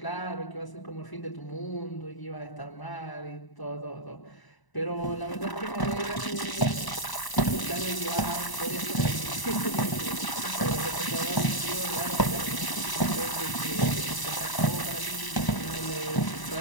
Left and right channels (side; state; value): right; late; 1.0 ms